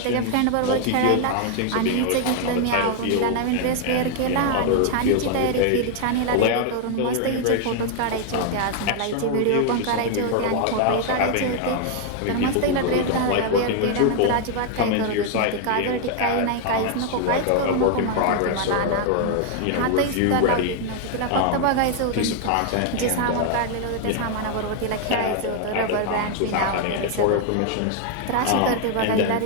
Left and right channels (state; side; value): different; both; correlation 0.00